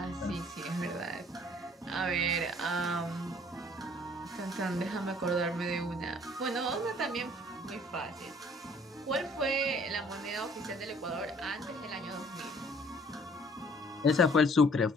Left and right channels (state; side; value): normal; both; correlation 0.57